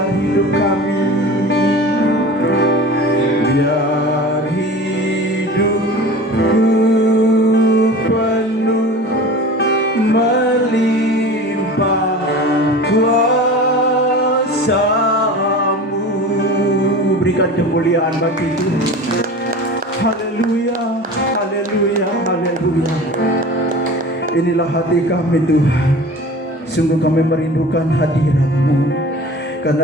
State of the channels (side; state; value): both; normal; correlation 0.37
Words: hidup kami, biar hidupku penuh melimpah kuasa-Mu. Berikan kemuliaan bagi Tuhan. Haleluya, haleluya, haleluya. Inilah hati kami Tuhan. Sungguh kami merindukan hadirat-Mu.